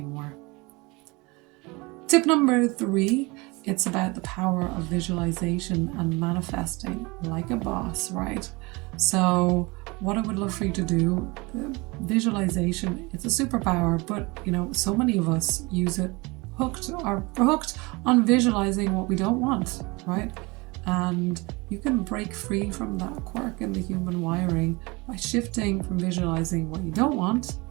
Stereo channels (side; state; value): left; quieter; 25.4 dB